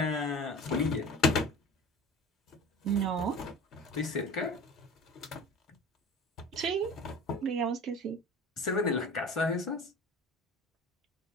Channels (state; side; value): normal; both; correlation 0.37